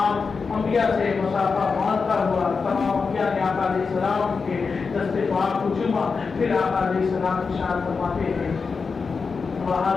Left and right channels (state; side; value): quieter; right; 5.0 dB